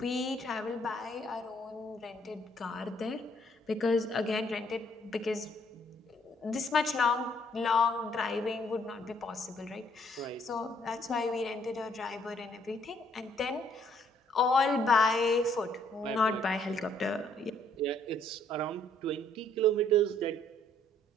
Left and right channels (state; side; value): normal; both; correlation 0.66